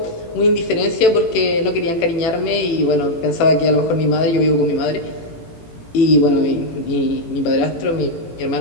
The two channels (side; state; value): right; late; 18 ms